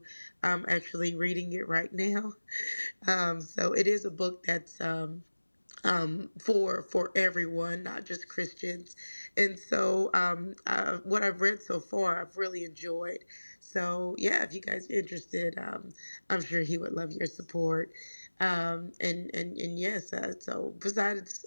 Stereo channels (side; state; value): both; inverted; correlation -1.00